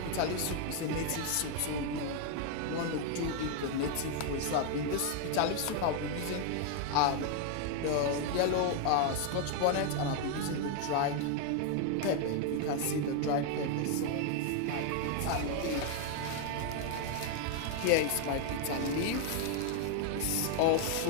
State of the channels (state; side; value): different; both; correlation 0.00